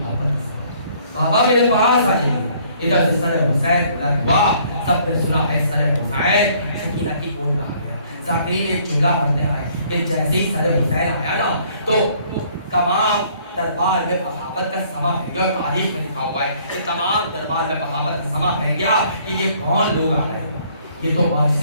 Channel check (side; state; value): both; inverted; correlation -0.61